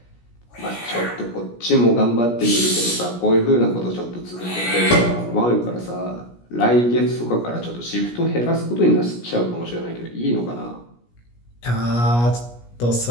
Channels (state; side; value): late; right; 17 ms